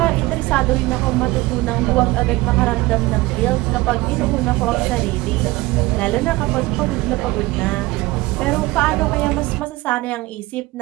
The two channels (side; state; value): left; quieter; 20.2 dB